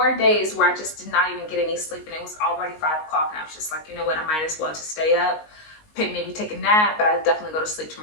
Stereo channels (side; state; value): right; late; 19 ms